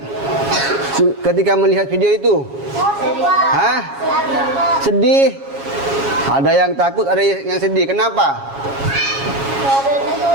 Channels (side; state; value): left; late; 7.3 ms